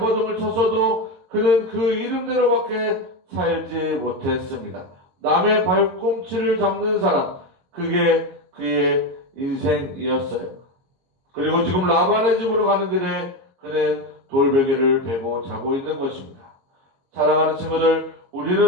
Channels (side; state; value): left; late; 22 ms